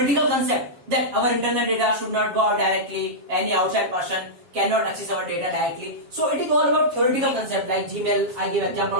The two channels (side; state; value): left; late; 7.3 ms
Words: concept that our internal data should not go out directly. Any outside person cannot access our data directly. So it is all about theoretical concept like Gmail. I give example